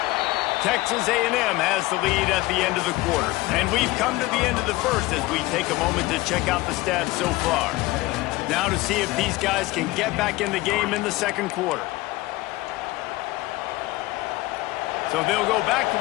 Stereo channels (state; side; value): quieter; right; 19.7 dB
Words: Texas A&M has the lead at the end of the quarter. And we've come to the end of the first as we take a moment to check out the stats so far. Now to see if these guys can get back in the game in the 2nd quarter. So they'll go back to